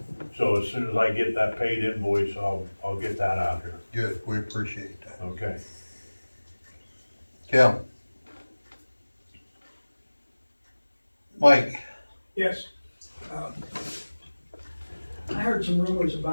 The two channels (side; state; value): both; inverted; correlation -1.00